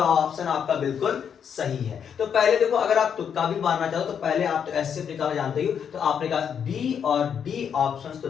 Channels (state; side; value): quieter; right; 7.7 dB